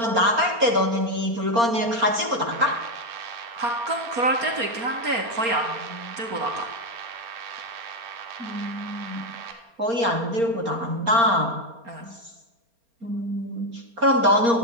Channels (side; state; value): left; late; 4.3 ms